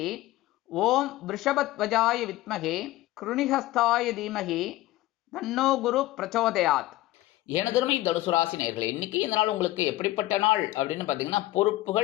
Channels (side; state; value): right; quieter; 16.8 dB